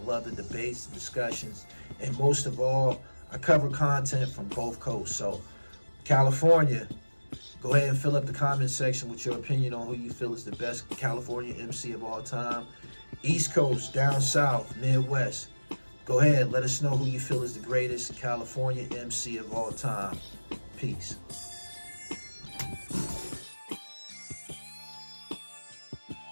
the debates, the discussions, and most of all, I cover content from both coasts. So, California, go ahead and fill up the comment section with your opinion on who you feel is the best California MC of all time. East Coast, down south, Midwest, go ahead, let us know who you feel is the greatest California MC of all time. Peace.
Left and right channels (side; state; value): both; inverted; correlation -1.00